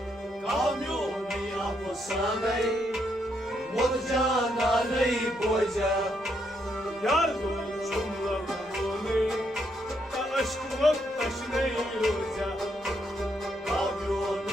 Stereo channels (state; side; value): normal; both; correlation 0.76